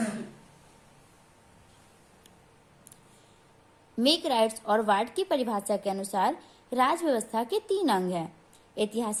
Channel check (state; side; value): identical; both; correlation 1.00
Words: मेक राइट्स और वार्ड की परिभाषा के अनुसार राज व्यवस्था के 3 अंग हैं: